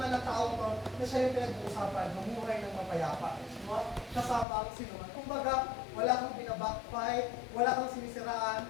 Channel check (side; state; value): right; drops out; at 4.5 s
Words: ng tao to na siya yung pinag-uusapan, mamuhay ng mapayapa. No? Kasama ang sinuman. Kumbaga, wala kang binabackfight, wala kang sinisiraan.